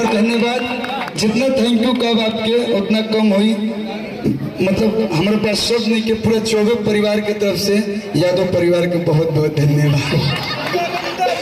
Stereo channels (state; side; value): identical; both; correlation 1.00